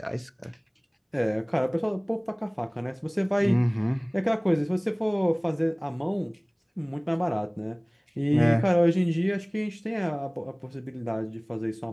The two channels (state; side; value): identical; both; correlation 1.00